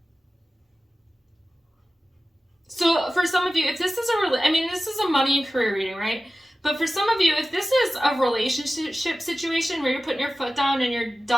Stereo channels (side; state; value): both; normal; correlation 0.95